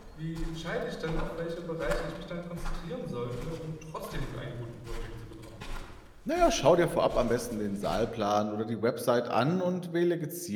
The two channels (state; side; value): identical; both; correlation 1.00